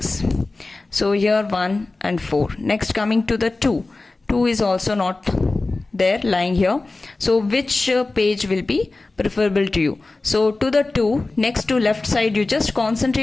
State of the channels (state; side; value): quieter; right; 3.3 dB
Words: So here 1 and 4. Next coming to the 2 is also not there, lying here. So which page will be preferable to you? So to the 2, next to left side, you just